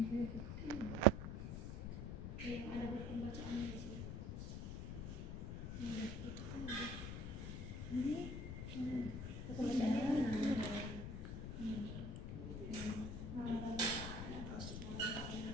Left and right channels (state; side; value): noise; left; rumble, 5 dB below the sound